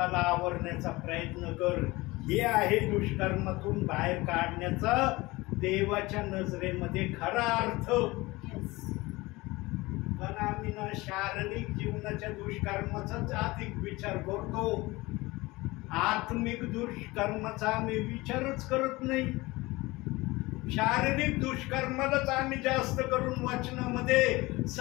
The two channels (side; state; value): right; quieter; 21.4 dB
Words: आवरण्याचा प्रयत्न कर. हे आहे दुष्कर्मातून बाहेर काढण्याचा देवाच्या नजरेमध्ये खरा अर्थ. पण आम्ही ना शारीरिक जीवनाच्या दुष्कर्माचाच अधिक विचार करतो, आत्मिक दुष्कर्माचा आम्ही विचारच करत नाही. शारीरिक दुष्कर्मालाच आम्ही जास्त करून वचनामध्ये